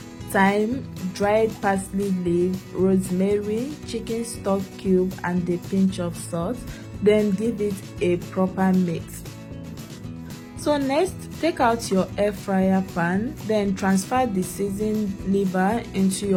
thyme, dried parsley leaf, rosemary, chicken stock cube and a pinch of salt. Then give it a proper mix. So next, take out your air fryer pan, then transfer the seasoned liver into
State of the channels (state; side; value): identical; both; correlation 1.00